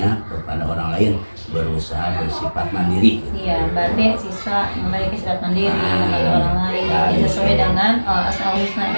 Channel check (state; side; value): inverted; both; correlation -1.00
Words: kepada orang lain, berusaha bersifat mandiri gitu. Iya, berarti siswa memiliki sifat mandiri membantu orang lain sesuai dengan Asmaul Husna